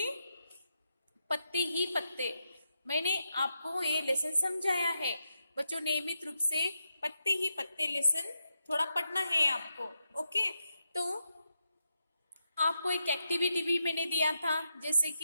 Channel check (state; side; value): inverted; both; correlation -0.84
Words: पत्ते ही पत्ते, मैंने आपको ये लेसन समझाया है। बच्चों, नियमित रूप से पत्ते ही पत्ते लेसन थोड़ा पढ़ना है आपको। ओके, तो आपको एक एक्टिविटी भी मैंने दिया था, जैसे